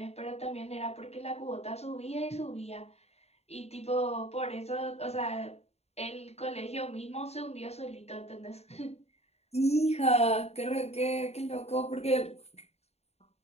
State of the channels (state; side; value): late; right; 0.31 ms